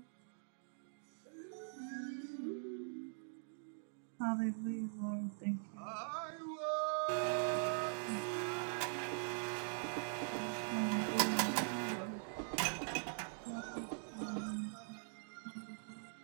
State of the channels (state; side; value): silent; left; digital silence